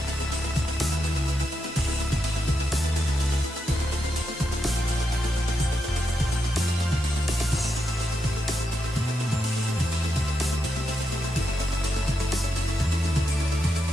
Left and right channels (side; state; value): both; normal; correlation 0.84